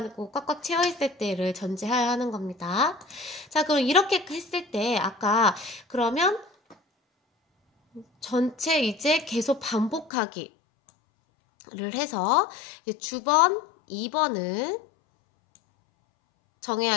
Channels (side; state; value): right; drops out; at 10.1 s